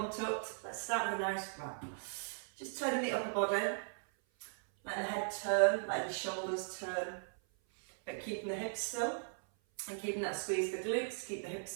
tucked. Let's start with a nice wrap. Just turning the upper body, letting the head turn, letting the shoulders turn, but keeping the hips still and keeping that squeeze the glutes, keep the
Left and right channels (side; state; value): left; silent; 52 dB below the other